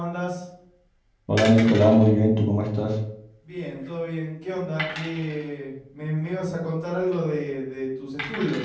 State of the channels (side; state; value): both; identical; correlation 1.00